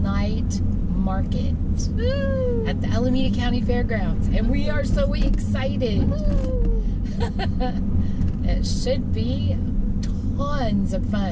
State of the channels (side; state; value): both; identical; correlation 1.00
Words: Night Market at the Alameda County Fairgrounds, and we are so excited. It should be tons of